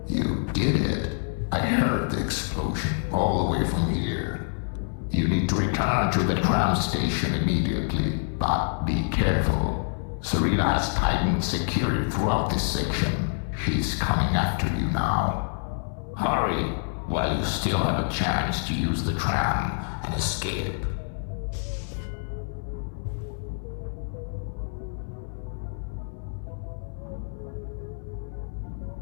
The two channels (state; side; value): silent; right; digital silence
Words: You did it. I heard the explosion all the way from here. You need to return to the tram station immediately, but be careful. Serena has tightened security throughout this section. She's coming after you now. Hurry, while you still have a chance to use the tram and escape.